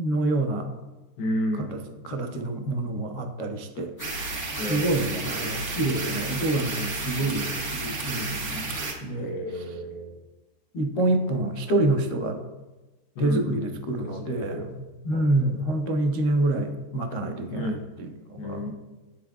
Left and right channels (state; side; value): late; right; 13 ms